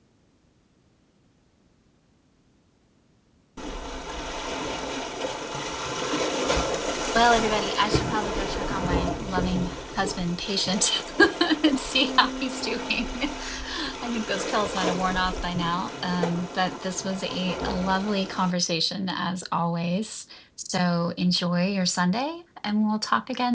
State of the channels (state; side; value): identical; both; correlation 1.00